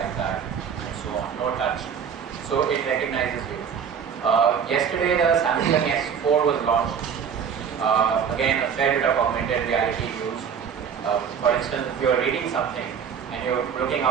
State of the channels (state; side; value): quieter; left; 7.3 dB